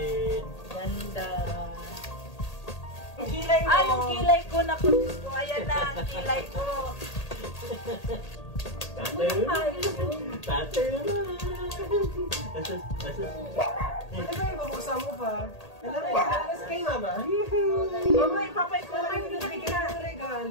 Ganda. Yung kilay mo. Yung kilay ko. Naku, ayan na, ang kilay ko. Tatay na. Tatay na. Ano ba yung babuksan mo pa? Ano ba yung sinalas kay mama? Mama, ipapait ko lang yung nabigyan ng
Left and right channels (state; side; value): late; right; 1.8 ms